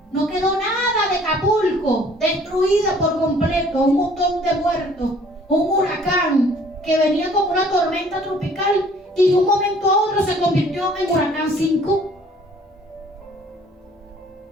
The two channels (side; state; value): both; normal; correlation 0.56